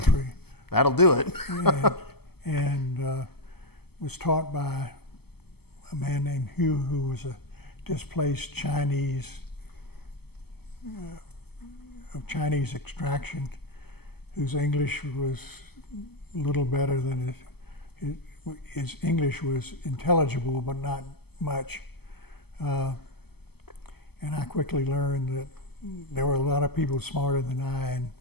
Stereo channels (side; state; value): right; late; 0.96 ms